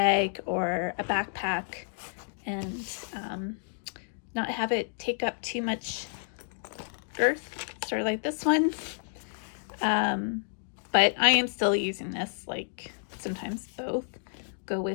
or a backpack, and not have it take up too much girth, sort of like this one. But I am still using this, like sometimes both go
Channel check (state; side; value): silent; right; digital silence